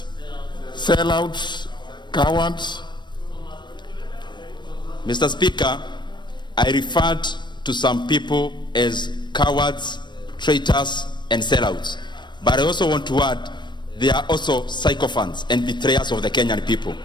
sellouts, cowards. Mr. Speaker, I referred to some people as cowards, traitors, and sellouts. But I also want to add, they are also sycophants and betrayers of the Kenyan people.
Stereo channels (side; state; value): right; late; 0.22 ms